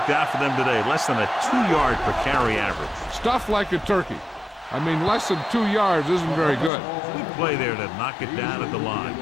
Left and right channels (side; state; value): right; drops out; at 6.7 s